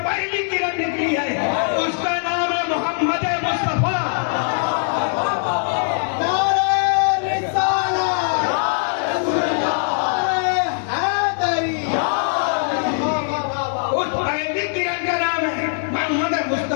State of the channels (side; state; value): right; silent; 65 dB below the other